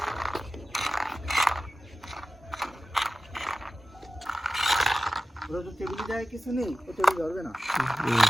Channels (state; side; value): normal; both; correlation 0.94